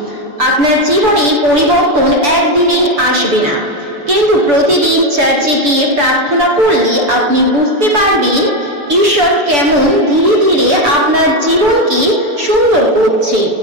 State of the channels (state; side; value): late; left; 6.9 ms